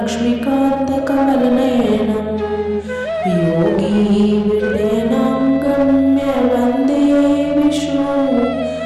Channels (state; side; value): identical; both; correlation 1.00